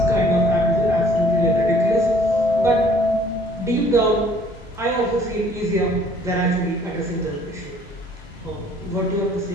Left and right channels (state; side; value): normal; both; correlation 0.58